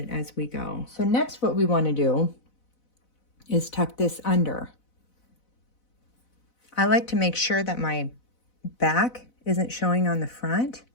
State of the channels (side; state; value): right; late; 4.0 ms